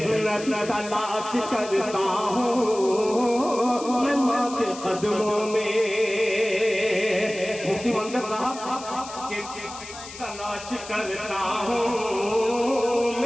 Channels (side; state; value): left; noise; hiss, 14 dB below the sound